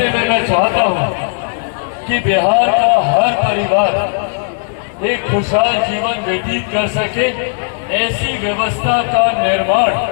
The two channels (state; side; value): silent; right; digital silence